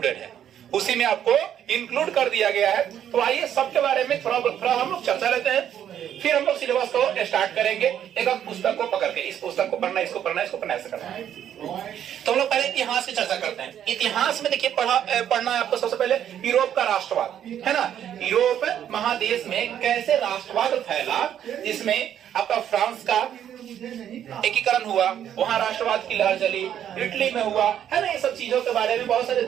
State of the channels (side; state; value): left; quieter; 10.0 dB